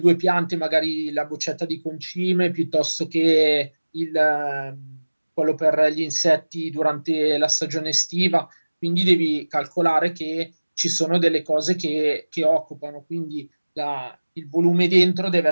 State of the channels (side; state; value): both; inverted; correlation -1.00